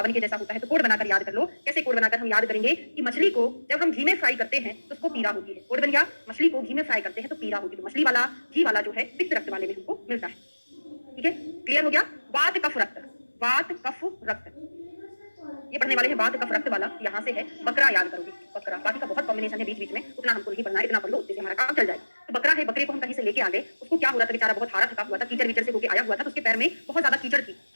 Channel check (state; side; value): inverted; both; correlation -1.00